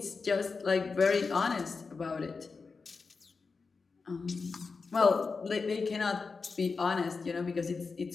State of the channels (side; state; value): right; quieter; 4.6 dB